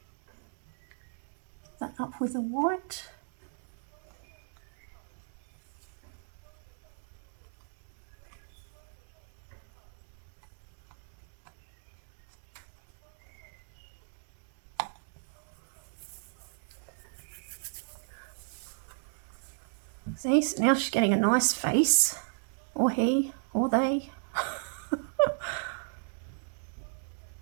that up with the white. See, so now she's getting a nice face, or he, or they.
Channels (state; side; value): silent; left; digital silence